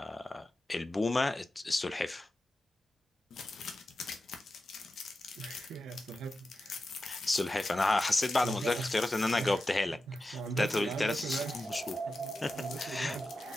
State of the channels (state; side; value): normal; both; correlation 0.92